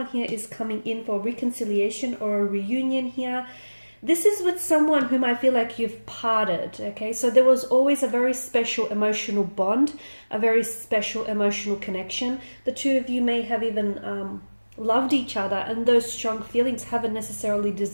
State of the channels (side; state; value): both; inverted; correlation -1.00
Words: here is coming in for reconciliation or a reunion here. This is with someone whom I feel like you've parted, okay? So there was always a very special emotional bond, a very special emotional connection. The two of you may have even loved each other, and those strong feelings haven't necessarily